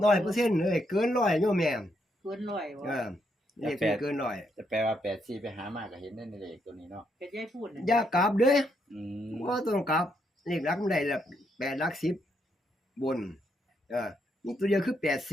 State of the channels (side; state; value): both; normal; correlation 0.77